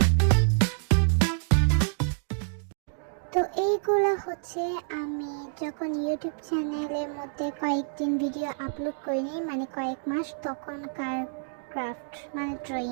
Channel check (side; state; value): left; silent; digital silence